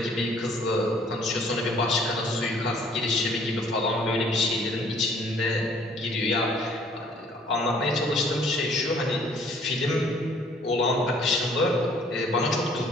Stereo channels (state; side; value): normal; both; correlation 0.59